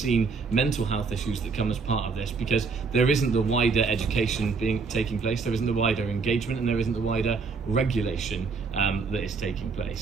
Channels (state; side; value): quieter; left; 4.8 dB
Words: mental health issues that come as part of this, because there isn't the wider education taking place, there isn't the wider engagement, and there isn't the wider regulation that is taking